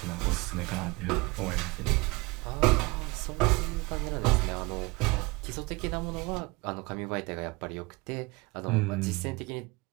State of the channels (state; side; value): quieter; left; 24.6 dB